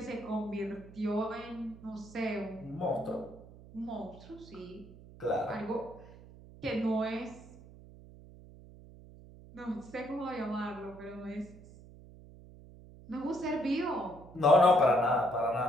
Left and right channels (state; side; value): noise; right; hum, 19 dB below the sound